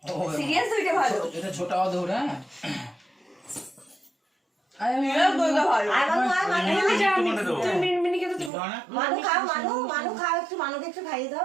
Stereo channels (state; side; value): drops out; left; at 8.5 s